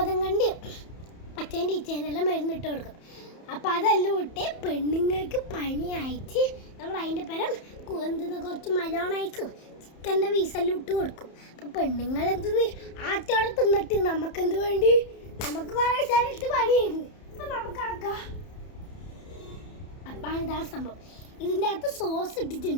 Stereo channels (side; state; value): right; late; 31 ms